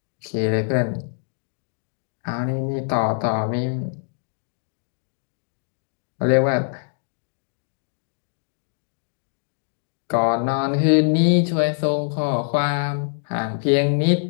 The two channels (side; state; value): right; silent; digital silence